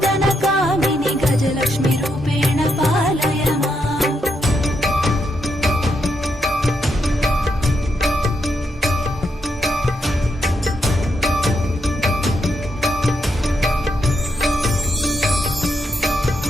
कामिनि गजलक्ष्मी रूपेण पालय माम्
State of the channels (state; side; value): normal; both; correlation 0.80